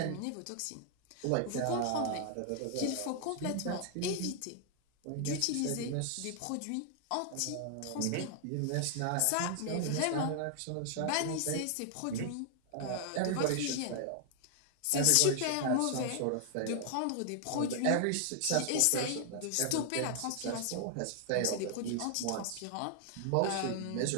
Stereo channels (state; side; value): different; both; correlation 0.00